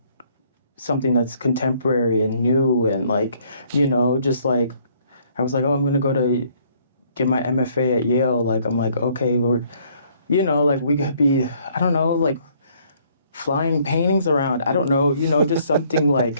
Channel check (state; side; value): inverted; both; correlation -0.64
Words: something that's contemporary and new and like, you know, just like I was like, oh, I'm going to go to get my MFA at Yale. Like I'm like, okay, we're, you know, like we could be, I don't know, like flying paintings around. I don't know, you know, just something